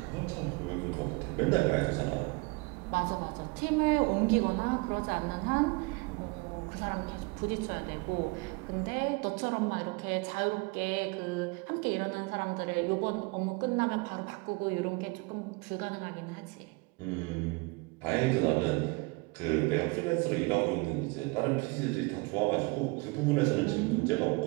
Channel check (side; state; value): left; quieter; 27.2 dB